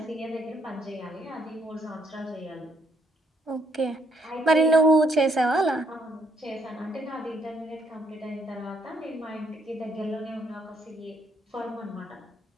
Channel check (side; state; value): both; normal; correlation 0.72